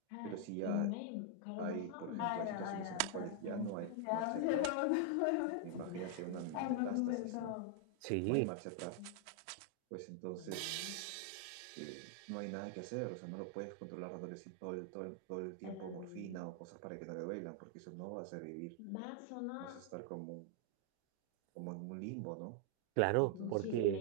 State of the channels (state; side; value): different; both; correlation 0.00